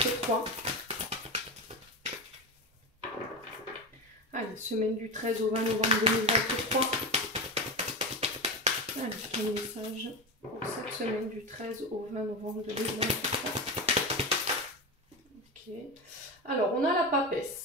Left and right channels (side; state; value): both; normal; correlation 0.19